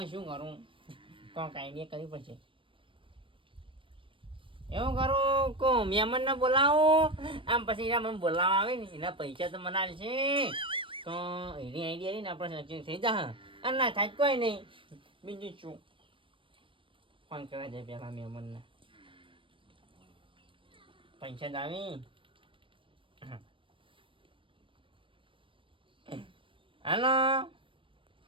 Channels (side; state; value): left; late; 0.25 ms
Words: શું કરું કોઈક આઈડિયા કરવી પડશે એવું કરું કો મહેમાનને બોલાવું આમ પછી એના મને બોલાવવા આવે ને એના પૈસા તો મને આવશે તો એની આઈડિયા ને આપણે સચિન થઈ જા અને ના થાય કોઈ નહીં બીજું શું ફોન કરવા જાય પેલા મહેમાનને પૈસા જ આવી હાલો